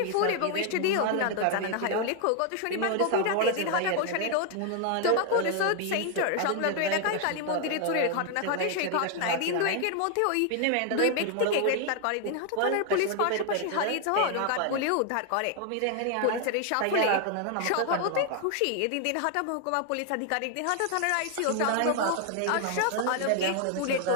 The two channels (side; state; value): both; different; correlation 0.00